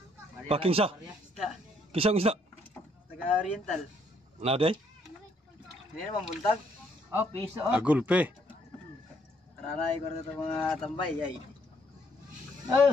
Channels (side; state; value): both; normal; correlation 0.69